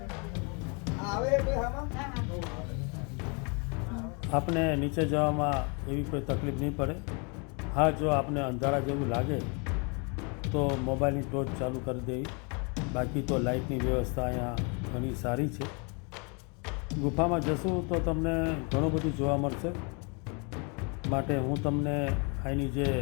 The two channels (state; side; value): quieter; right; 34.2 dB